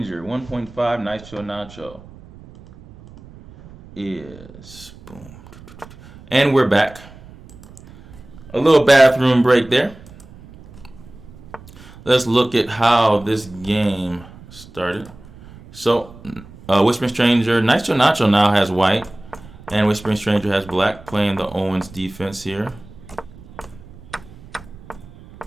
1.5, Nice Chill Nacho is boom. And we're back. A little bathroom break there. let's look at how this game started. So, Whispering Stranger, Nitro Nacho now has white, and Whispering Stranger has black, playing the Owens defense here.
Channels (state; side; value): noise; right; rumble, 20 dB below the sound